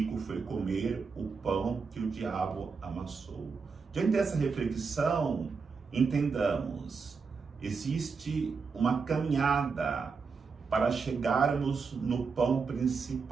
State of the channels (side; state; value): left; quieter; 5.1 dB